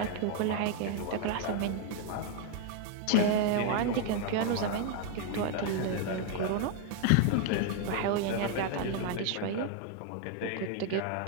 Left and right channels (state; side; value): different; both; correlation 0.00